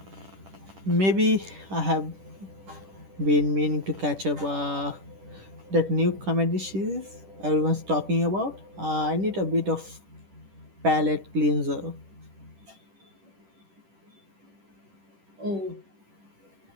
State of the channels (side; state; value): left; late; 10 ms